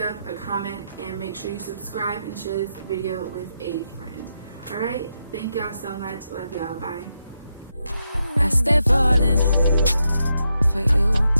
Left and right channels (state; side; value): inverted; both; correlation -0.83